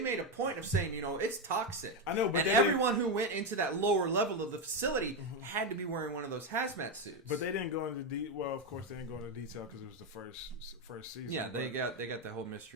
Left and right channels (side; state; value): both; normal; correlation 0.09